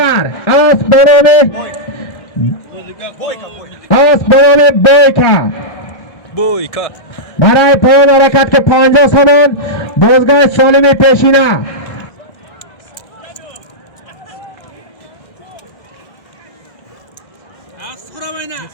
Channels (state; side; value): late; right; 1.6 ms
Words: بنام بویکا Boyka. برای پایان حرکت که 50 سامان بازگاه سالم پیشینه